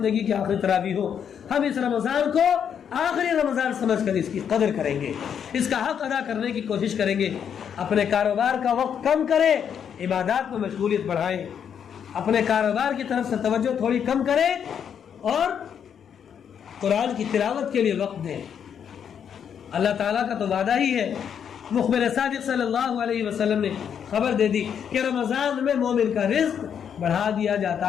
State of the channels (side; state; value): right; quieter; 8.1 dB